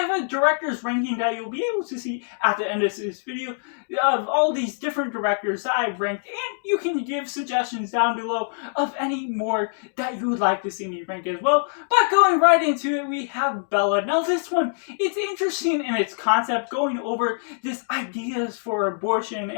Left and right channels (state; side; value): silent; right; digital silence